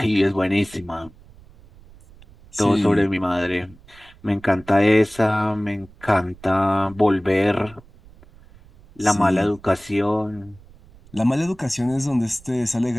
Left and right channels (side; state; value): right; noise; rumble, 24 dB below the sound